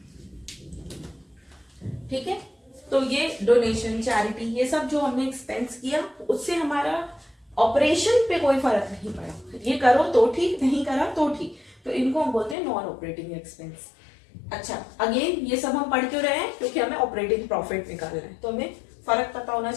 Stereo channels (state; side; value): drops out; right; at 12.6 s